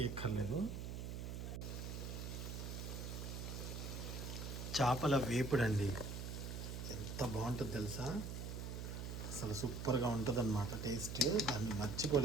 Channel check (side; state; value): right; noise; hum, 5 dB below the sound